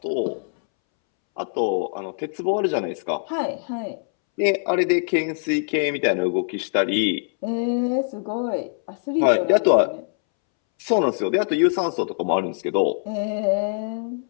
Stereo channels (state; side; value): silent; right; 63 dB below the other